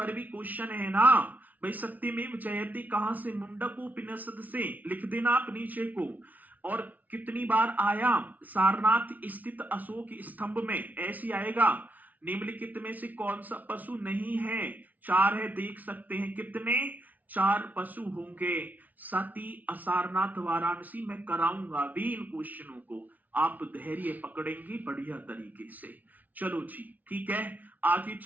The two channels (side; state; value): left; late; 0.076 ms